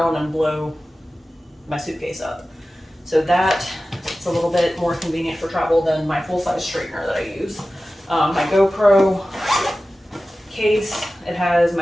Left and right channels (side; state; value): both; normal; correlation 0.95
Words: on and blow my suitcase up. So that it's a little bit more convenient for travel than my full-size straightener that I use. My Gopro case, it has